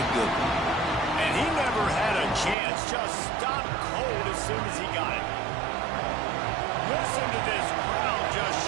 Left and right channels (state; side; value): drops out; left; at 2.6 s